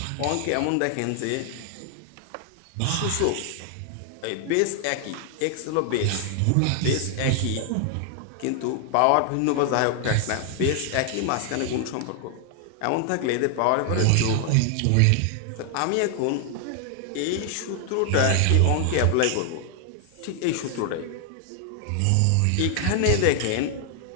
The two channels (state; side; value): different; both; correlation 0.00